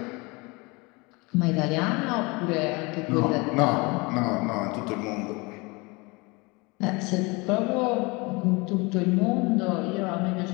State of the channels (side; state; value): right; quieter; 26.6 dB